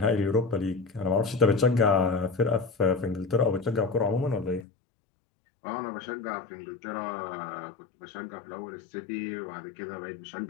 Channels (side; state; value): right; drops out; at 4.7 s